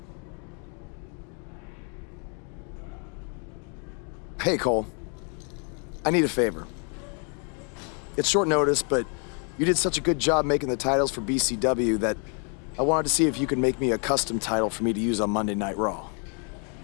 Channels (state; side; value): quieter; right; 38.7 dB